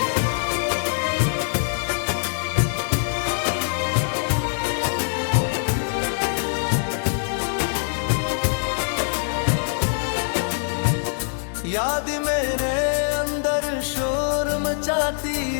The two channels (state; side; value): silent; right; digital silence